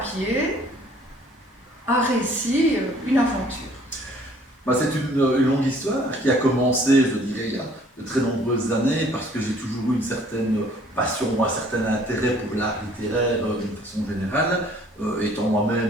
un récit, une aventure? C'est une longue histoire qui a commencé, je dirais, il y a de très nombreuses années, parce que j'ai toujours eu une certaine passion, un certain intérêt pour l'art littéraire d'une façon générale, étant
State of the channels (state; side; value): normal; both; correlation 0.57